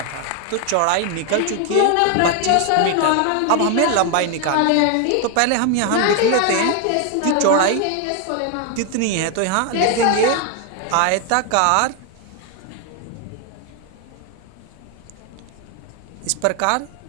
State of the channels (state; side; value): different; both; correlation 0.01